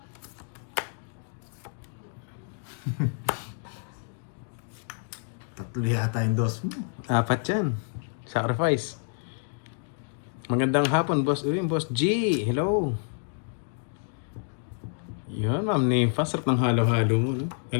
Tatlo yata yung dos mo. 4 yan. Sacrifice. Magandang hapon, boss. Uy, boss G. Hello. Yun, ma'am Nympha. Sarap ng halo-halo mo. No?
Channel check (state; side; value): silent; right; 59 dB below the other